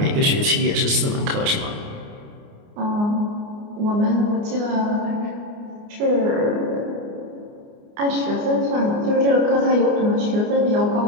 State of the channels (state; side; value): late; left; 29 ms